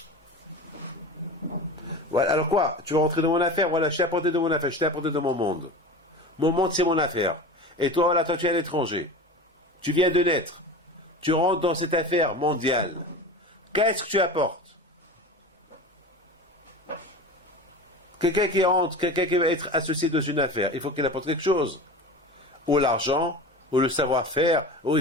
Voilà, alors quoi? Tu veux rentrer dans mon affaire? Voilà, je t'ai apporté de mon affaire, je t'ai apporté de mon monde. Mon monde, c'est mon affaire. Et toi, voilà, toi, tu es à l'étranger. Tu viens de naître. Tu rentres dans cette affaire mondiale. Qu'est-ce que tu apportes? Quelqu'un qui rentre, quelqu'un qui va être associé dans une affaire, il faut qu'il apporte quelque chose. Ou l'argent, ou le savoir-faire, ou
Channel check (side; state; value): both; normal; correlation 0.31